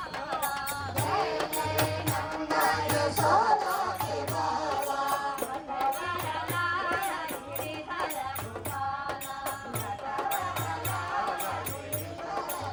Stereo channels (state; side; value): identical; both; correlation 1.00